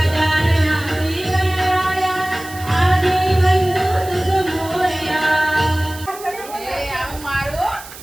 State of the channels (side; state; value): right; noise; hiss, 16 dB below the sound